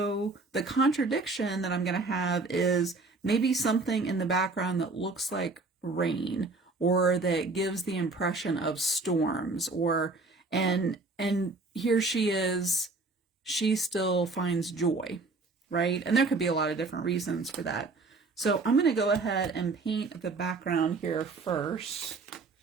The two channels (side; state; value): left; quieter; 3.7 dB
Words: the contradiction that I'm going to have is maybe something in the background that looks like rain, or that gives the impression of storms, or and here she is, she still finds joy, right? And there could be a lot of different reasons for that. So I'm going to go ahead and paint the background here first